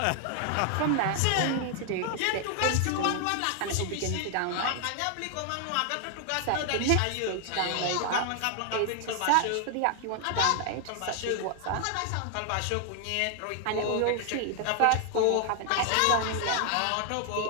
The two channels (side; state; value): both; different; correlation 0.00